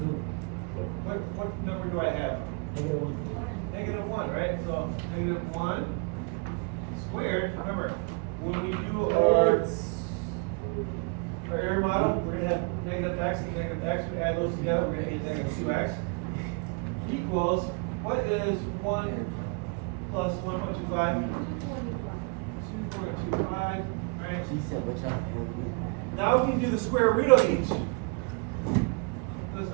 What number do I have? Negative 1. Negative 1, right? So negative 1 squared. Remember, when we do our error model, we're going to have negative x and negative x. We add those together, we're going to get negative 2x equals, what is 1 plus 1.25? 2.25. All right. She said, watch out. Now we can do the square root of each. Let's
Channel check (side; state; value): left; quieter; 34.6 dB